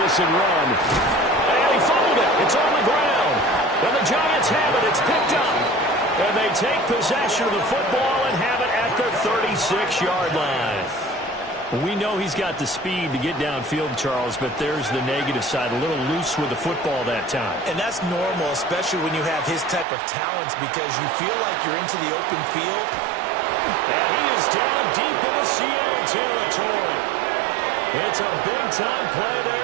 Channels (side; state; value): left; drops out; at 19.9 s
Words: and run. And he fumbled it. It's on the ground. And the Giants have it. It's picked up. And they take possession of the football and have it at their 36-yard line. We know he's got the speed to get downfield, Charles, but there's the negative side. A little loose with the football that time. And that's normal, especially when you have his type of talents, because you feel like you're into the open field. And he is down deep in the Seattle territory. It's a big-time play there